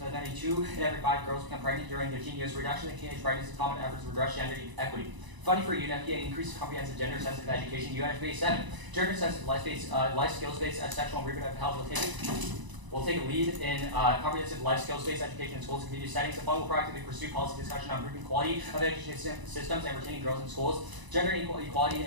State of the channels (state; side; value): late; left; 1.0 ms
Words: By 92 in every 5 girls become pregnant during their teen years. Reduction in teenage pregnancy, common efforts to redress gender equity. Funding for UNFPA increases comprehensive gender-sensitive education. UNFPA 7. Gender-sensitive life skills-based sexual and reproductive health will take a lead in comprehensive life skills-based education in schools and community settings. The fund will proactively pursue policy discussion on improving quality of education systems and retaining girls in schools. Gender equality in